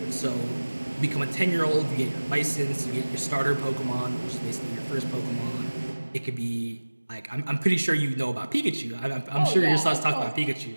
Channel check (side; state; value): both; inverted; correlation -1.00